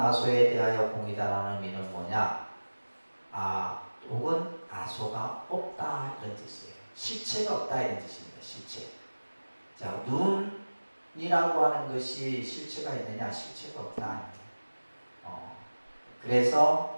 대하여 공이다라는 의미는 뭐냐? 아 혹은 아소가 없다 이런 뜻이에요. 실체가 없다 이런 뜻입니다. 실체. 자, 눈이라고 하는 것이 실체가 있느냐? 실체가 없다.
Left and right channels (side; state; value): both; inverted; correlation -1.00